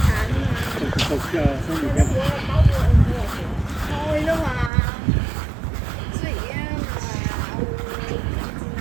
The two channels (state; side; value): drops out; left; at 4.7 s